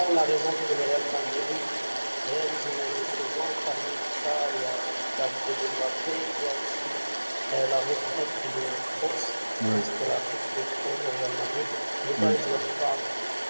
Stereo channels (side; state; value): both; inverted; correlation -1.00